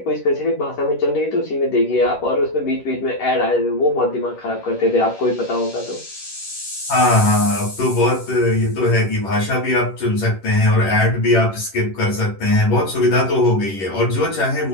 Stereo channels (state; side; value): late; right; 11 ms